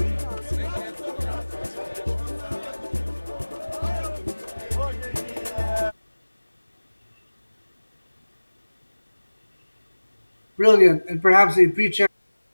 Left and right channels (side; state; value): both; inverted; correlation -1.00